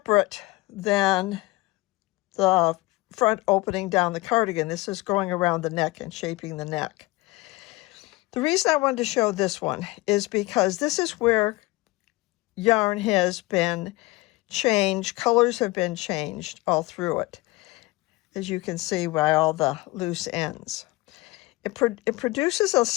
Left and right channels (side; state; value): right; quieter; 21.5 dB